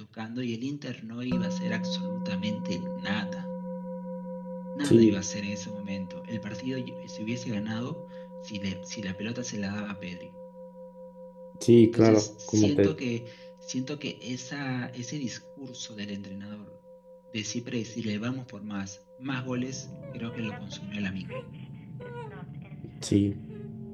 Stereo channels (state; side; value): identical; both; correlation 1.00